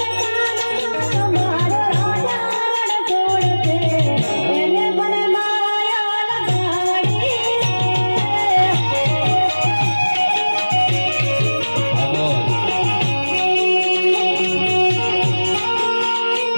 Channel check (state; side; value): inverted; both; correlation -1.00